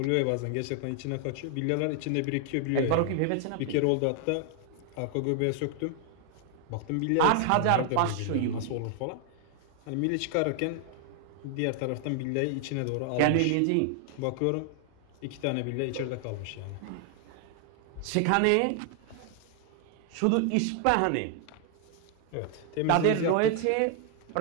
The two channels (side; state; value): both; different; correlation 0.00